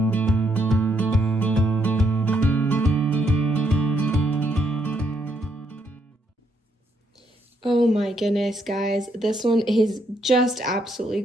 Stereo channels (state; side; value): normal; both; correlation 0.75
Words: Oh my goodness, guys. This one is just absolutely